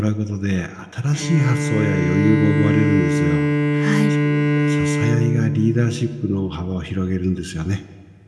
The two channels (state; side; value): identical; both; correlation 1.00